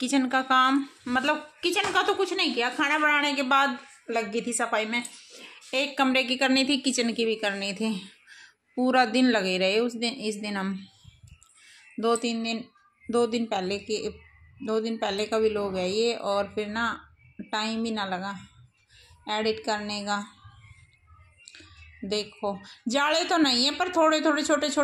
का काम किचन का तो कुछ नहीं किया। खाना बनाने के बाद लग गई थी सफाई में। एक कमरे की करनी थी, किचन की भी करनी थी। पूरा दिन लगे रहे इस दिन हम दो दिन पहले का भी लोग है ये। और फिर ना टाइम ही ना लगा एडिट करने का। देखो, जाले तो नहीं है पर थोड़े थोड़े छोटे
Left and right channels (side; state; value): both; identical; correlation 1.00